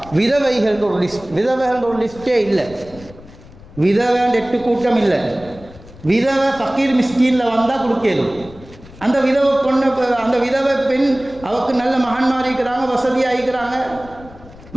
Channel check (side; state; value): left; noise; rumble, 20 dB below the sound